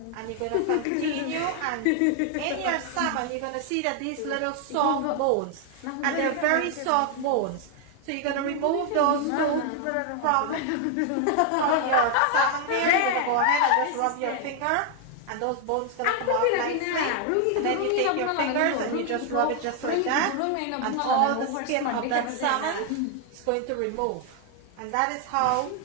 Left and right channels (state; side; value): different; both; correlation 0.00